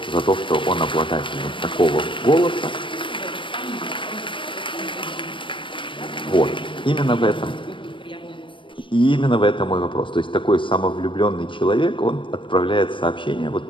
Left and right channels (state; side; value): late; right; 0.25 ms